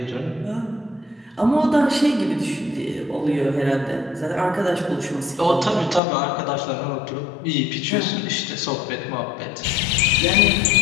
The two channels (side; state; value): right; drops out; at 6.0 s